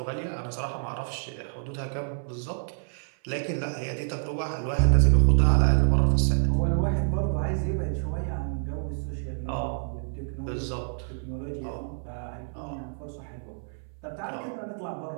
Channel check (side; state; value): left; silent; 59 dB below the other